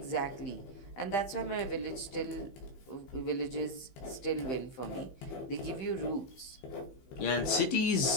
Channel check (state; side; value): late; right; 15 ms